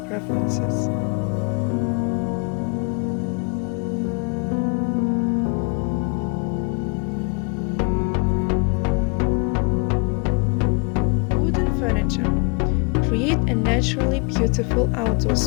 preferences. Wooden furniture. Create a naturally beautiful outdoor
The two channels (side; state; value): right; quieter; 36.0 dB